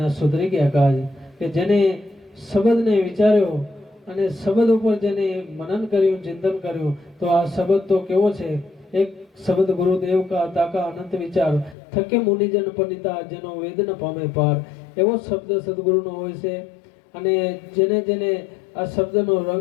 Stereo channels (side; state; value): right; drops out; at 11.8 s